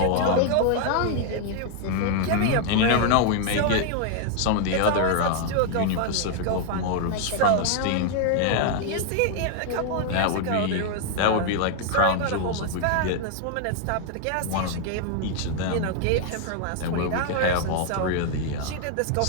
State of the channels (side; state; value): both; different; correlation 0.00